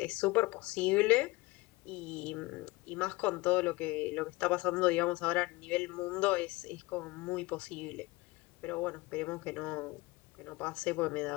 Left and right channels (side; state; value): right; quieter; 22.0 dB